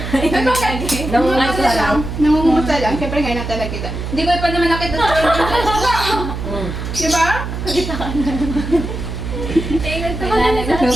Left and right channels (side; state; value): right; noise; hum, 6 dB below the sound